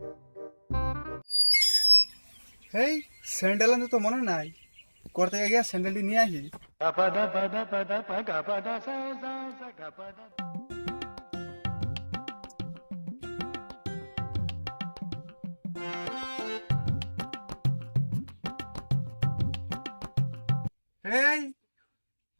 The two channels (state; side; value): inverted; both; correlation -1.00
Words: হেই, স্যান্ডেল আনতে তো মনে নাই। ঘর থেকে গিয়া স্যান্ডেলটি নিয়ে আসি। হেই,